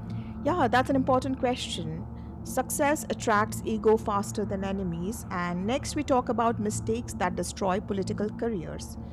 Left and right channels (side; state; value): both; identical; correlation 1.00